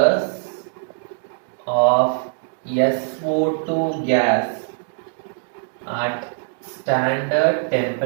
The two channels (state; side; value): silent; left; digital silence